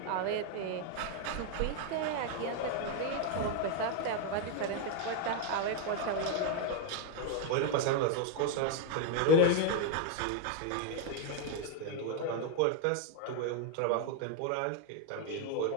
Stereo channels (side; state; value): both; different; correlation 0.01